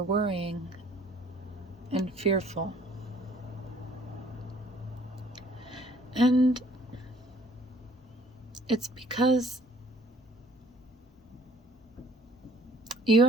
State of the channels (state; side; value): normal; both; correlation 0.57